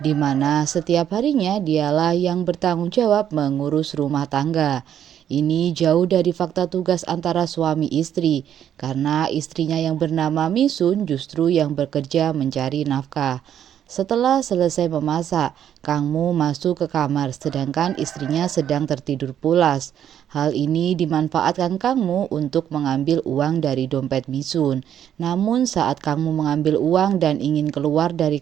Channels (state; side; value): quieter; left; 9.9 dB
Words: di mana setiap harinya dialah yang bertanggung jawab mengurus rumah tangga. Ini jauh dari fakta tugas antara suami istri, karena istrinya yang bernama Misun justru yang bekerja mencari nafkah. Setelah selesai memasak, Kang Mu masuk ke kamar sedangkan istrinya sedang tertidur pulas. Hal ini dimanfaatkan Kang Mu untuk mengambil uang dari dompet Misun. Namun saat Kang Mu mengambil uang dan ingin keluar dari